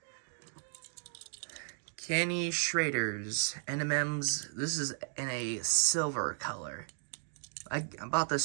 Kenny Schrader's NMM's. This is in a silver color. I bought this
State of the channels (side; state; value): left; silent; digital silence